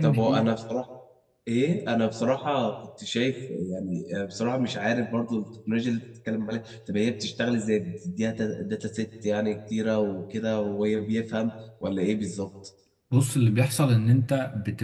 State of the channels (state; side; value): identical; both; correlation 1.00